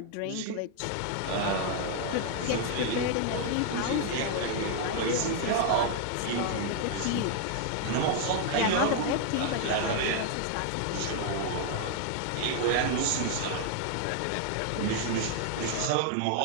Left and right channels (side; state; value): both; different; correlation 0.00